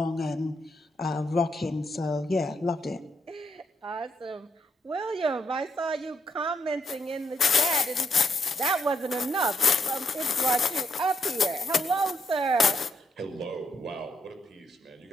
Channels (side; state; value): both; normal; correlation 0.77